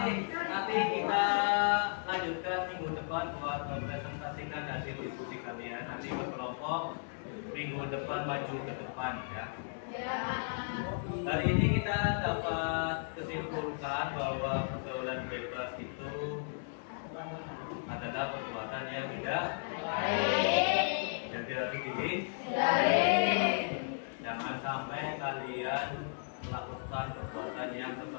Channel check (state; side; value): silent; right; digital silence